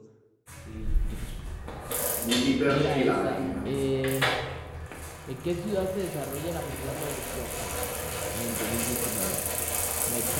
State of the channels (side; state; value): both; identical; correlation 1.00